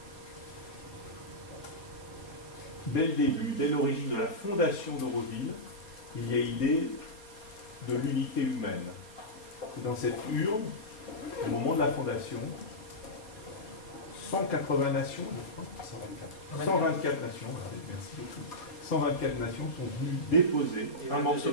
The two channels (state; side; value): late; right; 4.3 ms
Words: Dès le début, dès l'origine de la fondation d'Auroville, il y a l'idée de l'unité humaine. Et dans cette urne, au moment de la fondation, 180 nations, je crois, 124 nations, merci beaucoup, 124 nations sont venues déposer un morceau